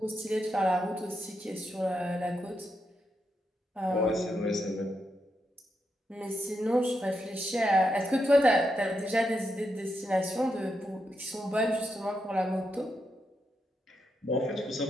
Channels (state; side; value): normal; both; correlation 0.83